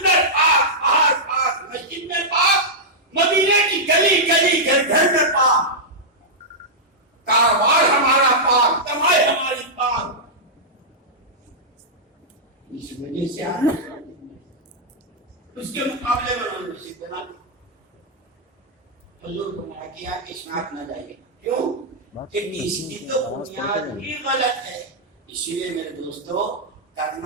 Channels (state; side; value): normal; both; correlation -0.08